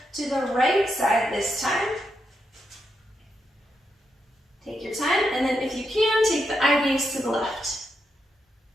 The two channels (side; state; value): both; normal; correlation 0.83